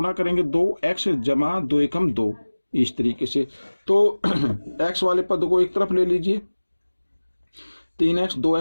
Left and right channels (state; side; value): inverted; both; correlation -1.00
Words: करेंगे, 2x जमा 2 एकम 2, इस तरीके से। तो x वाले पद को एक तरफ ले लीजिए, 3x